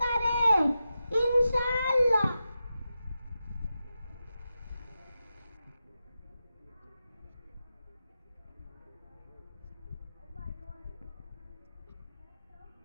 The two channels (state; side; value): inverted; both; correlation -0.90